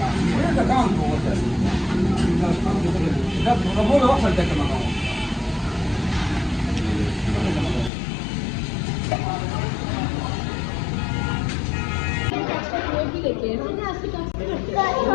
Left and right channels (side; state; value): right; drops out; at 7.9 s